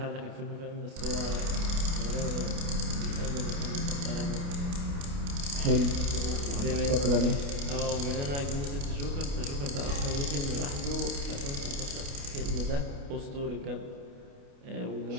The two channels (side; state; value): left; late; 29 ms